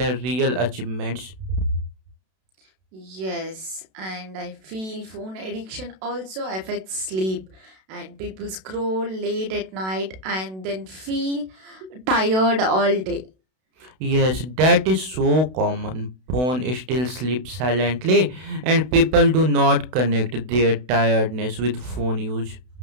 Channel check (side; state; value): left; late; 32 ms